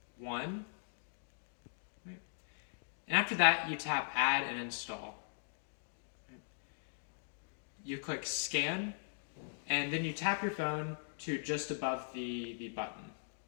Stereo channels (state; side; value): silent; right; digital silence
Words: 1. Right? And after that, you tap Add and Install. Right? You click Scan, and then you tap your phone to just above the button.